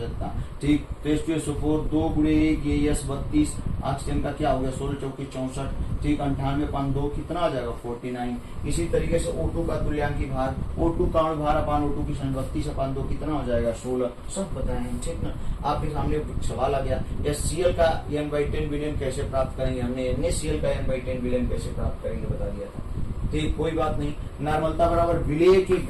ठीक। तो H2SO4 2 गुणे 1 ये S 32, ऑक्सीजन का क्या हो गया 16 चौकी 64, ठीक। 98/2 कितना आ जाएगा 49। इसी तरीके से O2 का तुल्यांकी भार, O2 का अणु भार अपान O2 की संख्या 32/2 कितना हो जाएगा 16, सब बताएंगे, ठीक ना। आपके सामने सवाल आ गया HCl का N/10 विलेयन कैसे प्राप्त करेंगे, हमने NaCl का N/10 विलेयन कैसे प्राप्त करेंगे बता दिया था, ठीक। कोई बात नहीं। नॉर्मलता बराबर विलेय के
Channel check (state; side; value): identical; both; correlation 1.00